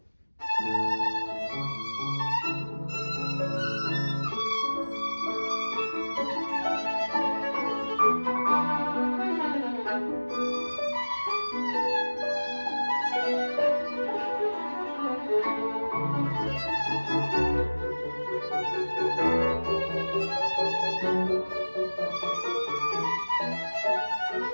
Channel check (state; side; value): inverted; both; correlation -1.00